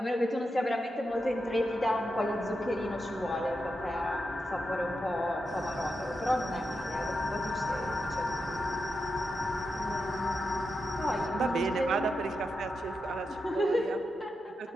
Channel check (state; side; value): normal; both; correlation 0.87